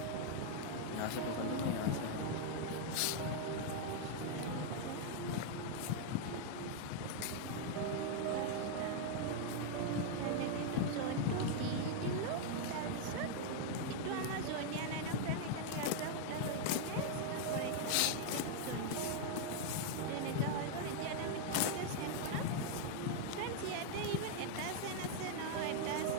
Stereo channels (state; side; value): different; both; correlation 0.00